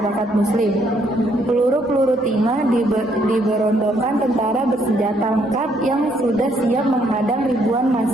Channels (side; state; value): both; normal; correlation 0.70